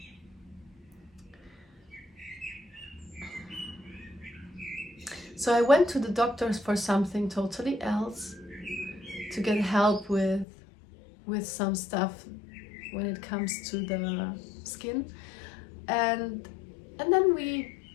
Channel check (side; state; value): right; drops out; at 10.5 s